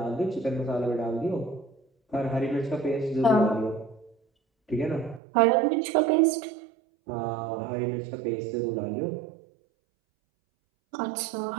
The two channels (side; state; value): left; drops out; at 5.2 s